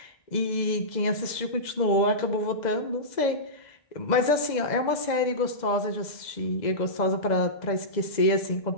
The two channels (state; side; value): late; right; 2.0 ms